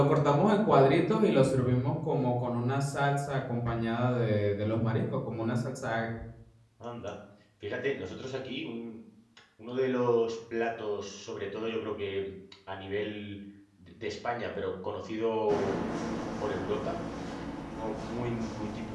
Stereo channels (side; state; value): both; identical; correlation 1.00